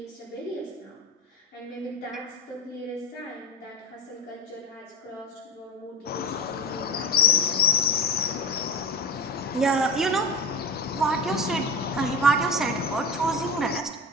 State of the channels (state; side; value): normal; both; correlation 0.25